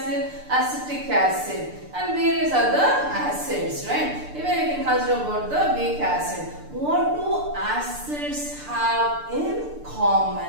acetic acid and various other acids, right? Even you can consider about the weak acid. What do acids have in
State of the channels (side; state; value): left; late; 6.8 ms